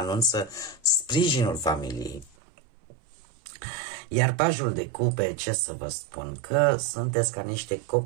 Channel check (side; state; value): left; drops out; at 2.3 s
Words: sprijinul familiei. Iar pajul de cupe, ce să vă spun, că sunteți ca niște